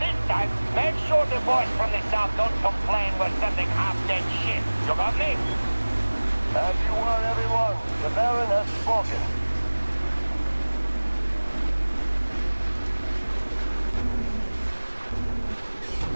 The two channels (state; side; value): inverted; both; correlation -1.00